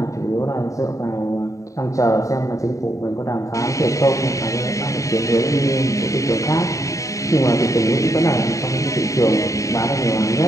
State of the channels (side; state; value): right; late; 0.16 ms